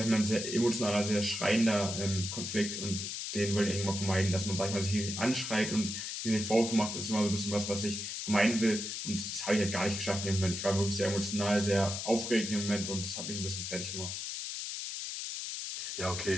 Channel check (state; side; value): noise; left; hiss, 5 dB below the sound